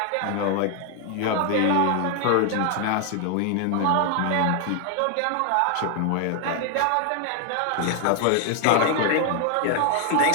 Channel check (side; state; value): both; different; correlation 0.00